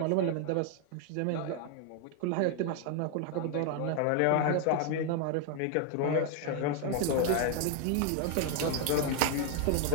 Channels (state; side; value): different; both; correlation 0.00